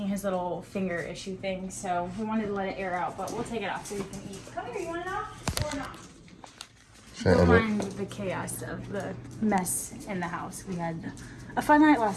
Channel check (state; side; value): identical; both; correlation 1.00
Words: his little finger issue thing, so we wanted to let it air out, but we'll take it off so you can eat. Come here, you want it off or not? Don't mind the chaos of the mess in the house. We had a fun night